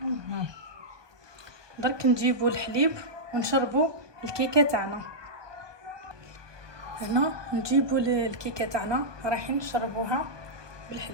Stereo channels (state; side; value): late; left; 1.2 ms